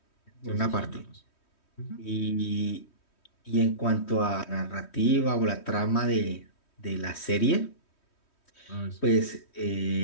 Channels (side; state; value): right; late; 3.1 ms